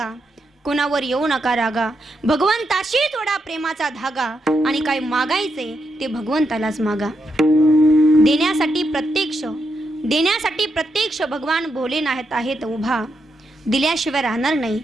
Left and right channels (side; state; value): both; normal; correlation 0.82